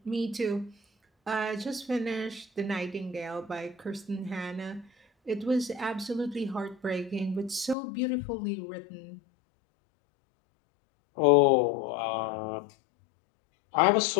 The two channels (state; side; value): drops out; right; at 7.8 s